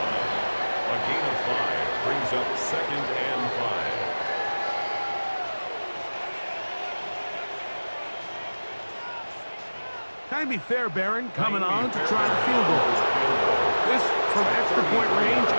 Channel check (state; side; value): inverted; both; correlation -1.00